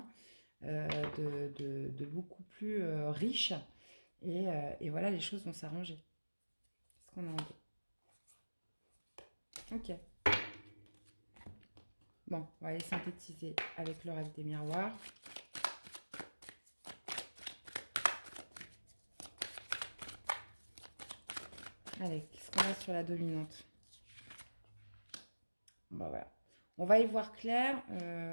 de beaucoup plus riche. Et voilà, les choses vont s'arranger. Qu'est-ce qu'on a en deux? Ok. Bon, on va aller synthétiser avec le reste des miroirs. Allez, qu'est-ce qu'on a sur la dominante? Bon, voilà. On va y voir clair.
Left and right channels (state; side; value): inverted; both; correlation -1.00